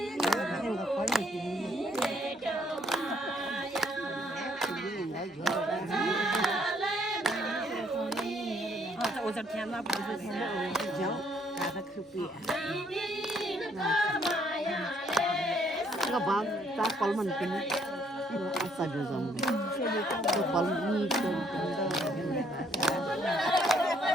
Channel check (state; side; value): normal; both; correlation 0.67